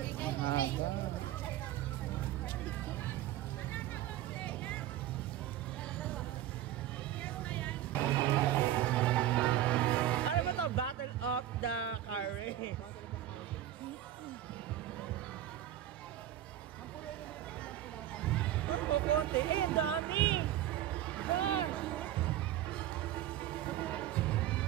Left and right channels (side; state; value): left; quieter; 12.5 dB